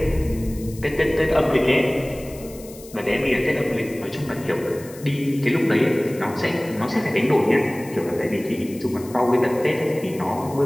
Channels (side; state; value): left; noise; hiss, 19 dB below the sound